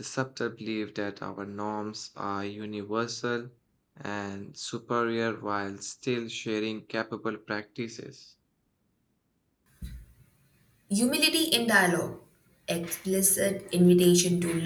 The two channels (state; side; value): identical; both; correlation 1.00